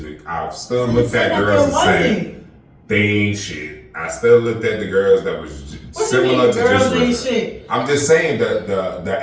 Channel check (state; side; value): identical; both; correlation 1.00